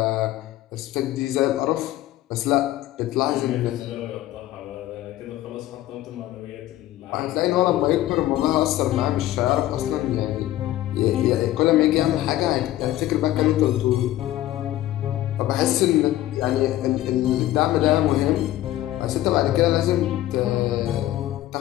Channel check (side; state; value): right; quieter; 14.5 dB